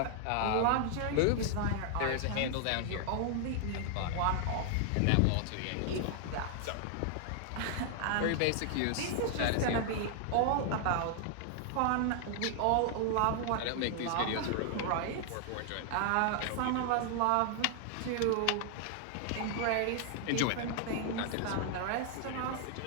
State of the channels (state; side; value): different; both; correlation 0.00